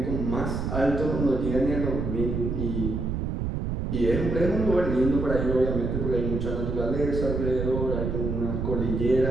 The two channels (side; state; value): right; noise; rumble, 2 dB below the sound